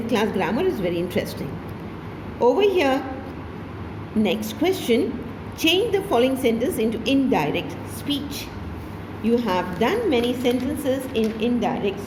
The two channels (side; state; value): both; identical; correlation 1.00